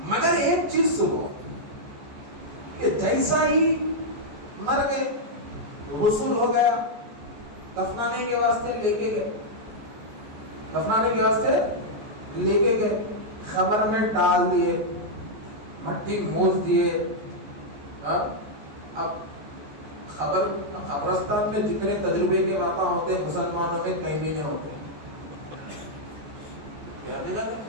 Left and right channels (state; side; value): late; left; 14 ms